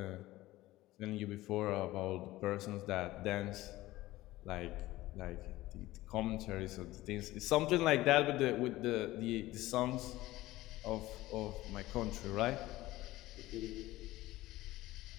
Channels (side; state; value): right; quieter; 17.3 dB